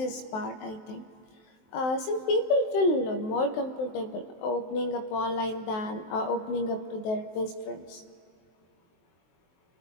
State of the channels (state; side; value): late; right; 23 ms